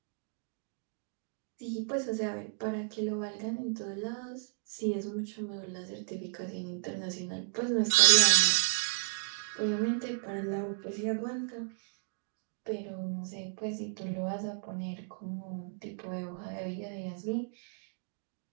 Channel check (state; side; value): silent; left; 55 dB below the other